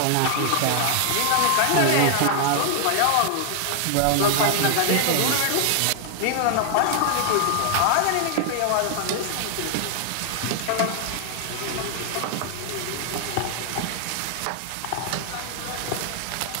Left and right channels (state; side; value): different; both; correlation 0.00